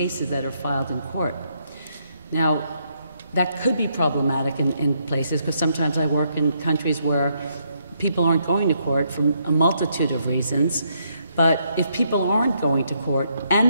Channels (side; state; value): both; inverted; correlation -0.75